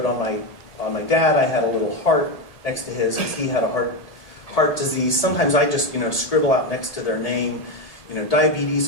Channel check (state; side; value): late; right; 1.8 ms